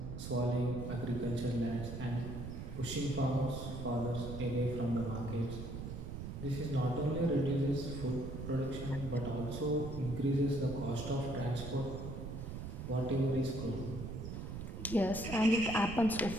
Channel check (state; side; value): noise; right; rumble, 7 dB below the sound